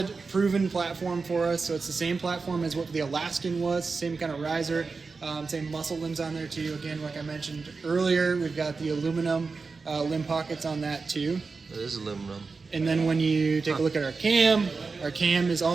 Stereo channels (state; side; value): quieter; left; 4.4 dB